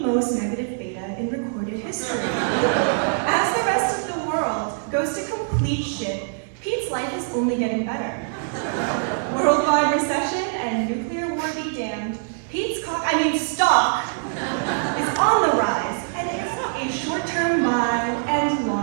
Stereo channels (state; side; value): silent; left; digital silence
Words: most negative beta in recorded history. As the rest of the world goes to complete shit, Pete's life is only getting better. Worldwide recession and nuclear war be damned, Pete's stock is on the rise and is a short-term buy and